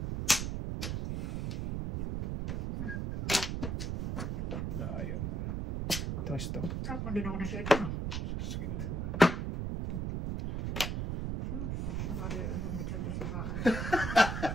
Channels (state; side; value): noise; right; rumble, 2 dB below the sound